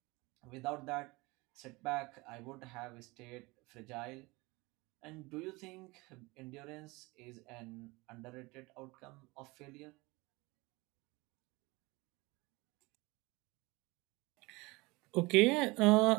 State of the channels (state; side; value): quieter; left; 23.8 dB